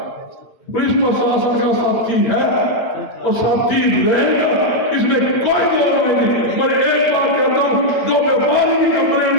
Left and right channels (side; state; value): right; late; 8.9 ms